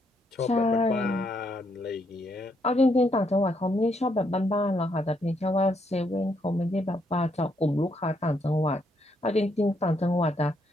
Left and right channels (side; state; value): both; normal; correlation 0.75